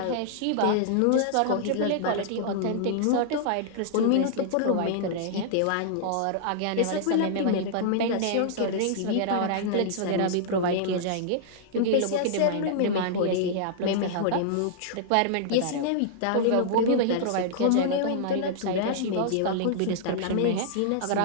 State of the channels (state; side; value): different; both; correlation -0.02